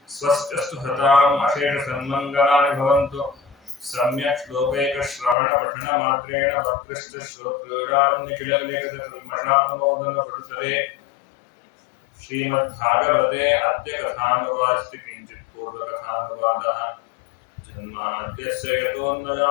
स्वस्त्यस्तु हताम् अशेषसन्मङ्गलानि भवन्तु सम्यक् श्लोकैकश्रवणपठनमात्रेण वक्तृश्च श्रोत्रीणां निखिललेखकल्मषापमोदनपटुतले श्रीमद्भागवते अद्य कथानुवादस्ति किञ्चित् पूर्वकथानुवादः जन्माद्यस्य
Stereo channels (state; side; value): drops out; right; at 5.4 s